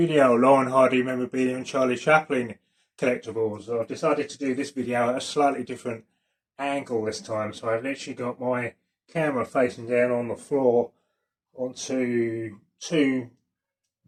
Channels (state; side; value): identical; both; correlation 1.00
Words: Laurel Hardy Memorabilia and Charlie Chaplin collectibles. I've decided to do this video at a slightly different angle this time, so I've literally got my camera facing down on the floor onto two